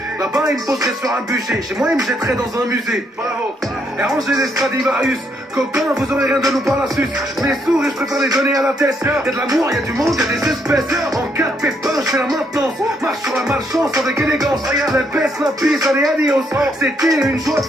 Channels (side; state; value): both; normal; correlation 0.74